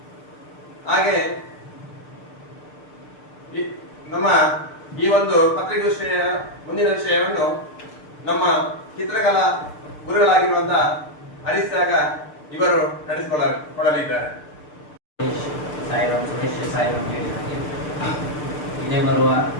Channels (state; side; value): late; right; 6.7 ms